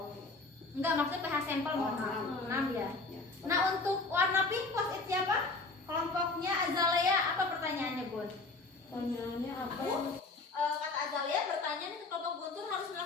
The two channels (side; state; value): right; quieter; 3.5 dB